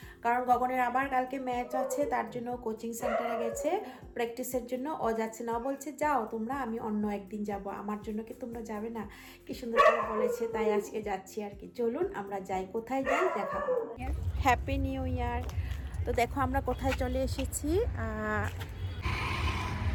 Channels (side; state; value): both; identical; correlation 1.00